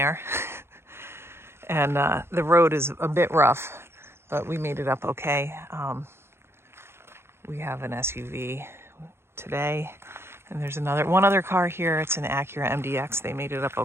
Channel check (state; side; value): late; left; 0.12 ms